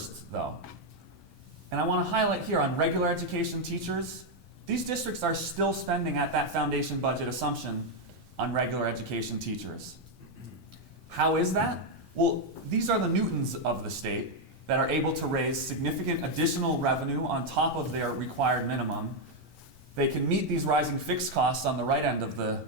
though. And I want to highlight here on regular education teachers, these districts are still spending at that foundation budget assumption on regular education teachers. How is that? Well, these are the Newtons of the state that are able to raise significant additional revenue on top of their required minimum. They can meet these rising fixed costs on the right end of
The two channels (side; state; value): both; normal; correlation 0.02